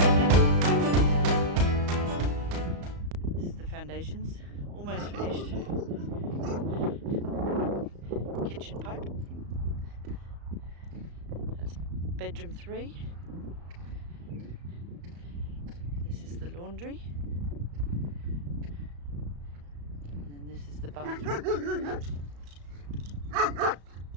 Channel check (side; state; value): left; late; 35 ms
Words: Foundations almost finished. Kitchen pipe. That's bedroom 3. This is the laundry. And then this is the bathroom.